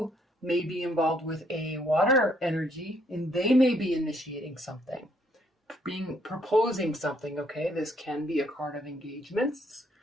may be involved with a water energy and they may be initiating something, proposing something. Okay. This can be a card of engagements,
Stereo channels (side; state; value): both; normal; correlation 0.69